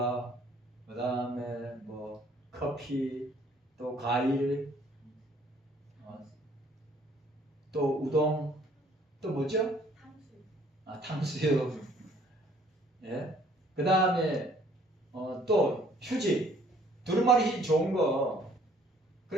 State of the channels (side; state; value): both; normal; correlation 0.59